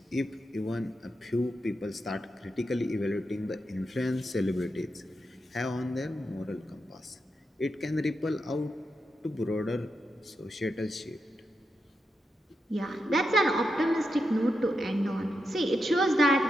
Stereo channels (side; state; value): both; normal; correlation 0.86